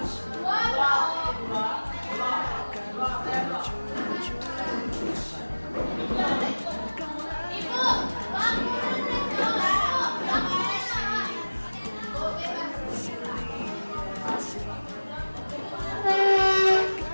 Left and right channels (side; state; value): both; inverted; correlation -1.00